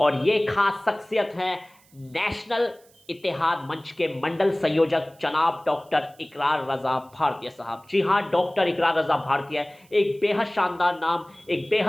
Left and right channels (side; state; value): right; noise; hiss, 30 dB below the sound